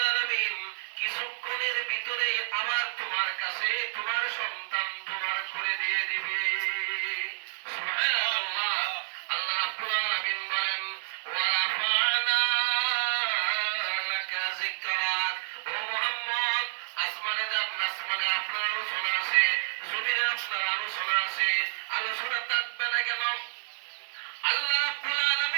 আলামিন কিছুক্ষণের ভিতরে আবার তোমার কাছে তোমার সন্তান তোমার করে দিয়ে দিবে। সুবহানাল্লাহ। আল্লাহ রাব্বুল আলামিন বলেন, ওয়া রাফা'না লাকা যিকরাক, ও মুহাম্মদ, আসমানে যান, আসমানে আপনার আলোচনা আছে, জমিনে আপনার আলোচনা আছে, আলোচনা থাকবে না কেন? আল্লাহ রাব্বুল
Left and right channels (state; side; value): silent; left; 56 dB below the other